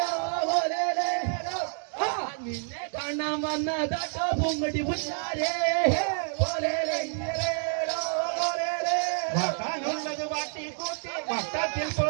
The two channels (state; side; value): silent; left; 59 dB below the other